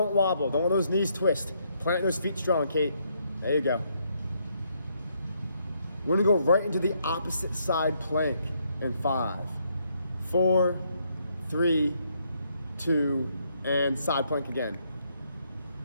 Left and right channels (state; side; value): inverted; both; correlation -0.73